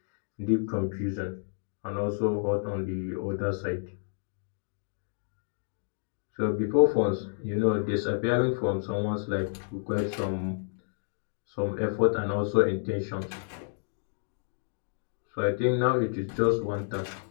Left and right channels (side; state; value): right; silent; digital silence